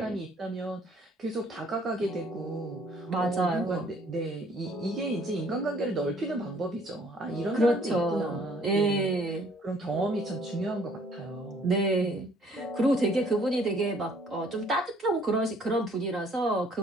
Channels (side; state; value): both; normal; correlation 0.60